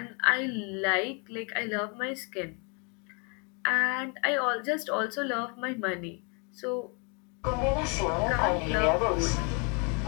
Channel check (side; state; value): right; quieter; 34.9 dB